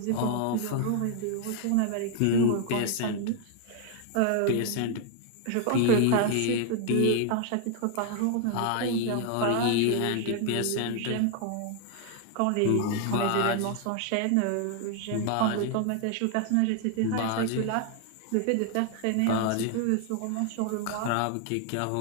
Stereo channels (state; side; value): different; both; correlation 0.00